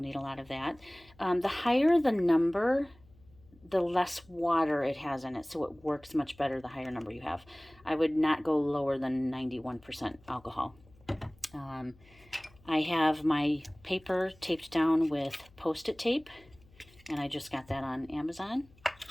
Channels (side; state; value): left; noise; hum, 27 dB below the sound